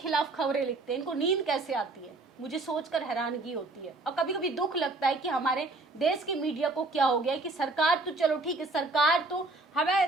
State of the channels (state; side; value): quieter; left; 3.1 dB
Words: खबरें लिखते हैं, इनको नींद कैसे आती है, मुझे सोचकर हैरानगी होती है। और कभी कभी दुख लगता है कि हमारे देश की मीडिया को क्या हो गया है कि सरकार तो चलो ठीक है, सरकार तो